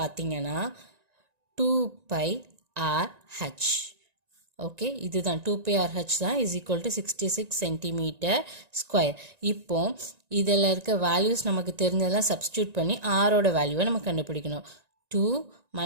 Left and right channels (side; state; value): left; late; 1.9 ms